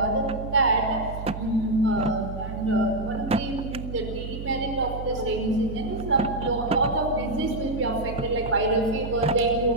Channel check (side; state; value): right; noise; hum, 8 dB below the sound